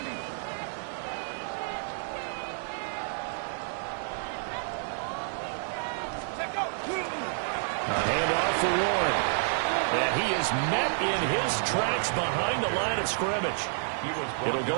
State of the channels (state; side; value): silent; left; digital silence